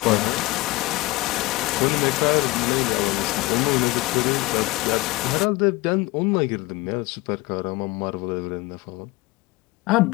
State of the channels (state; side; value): quieter; right; 21.5 dB